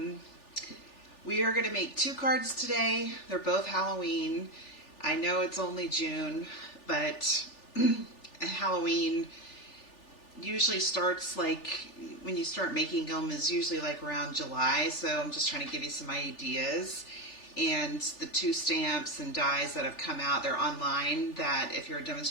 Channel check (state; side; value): late; right; 3.4 ms